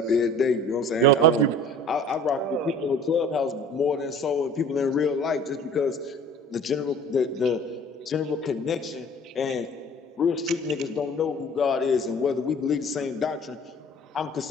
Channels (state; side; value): normal; both; correlation 0.47